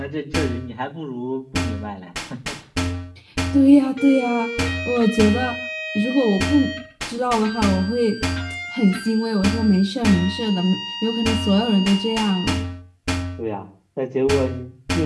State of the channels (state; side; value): identical; both; correlation 1.00